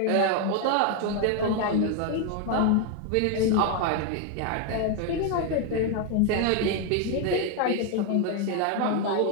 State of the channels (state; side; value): different; both; correlation 0.01